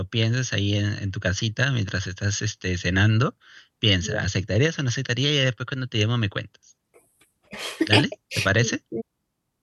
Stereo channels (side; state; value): both; identical; correlation 1.00